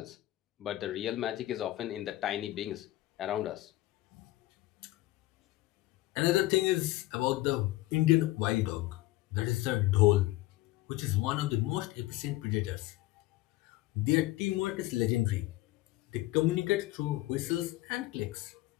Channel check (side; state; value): right; quieter; 17.5 dB